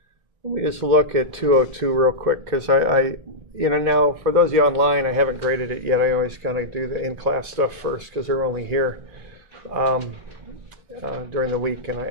Let me just look at 202 real quick, because you know, now for those of you online, I haven't graded it yet. I always kind of do the in-class stuff first, because they're only here during the week, and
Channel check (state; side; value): late; left; 2.0 ms